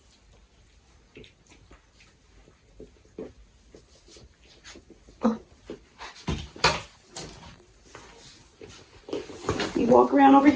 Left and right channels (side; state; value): both; identical; correlation 1.00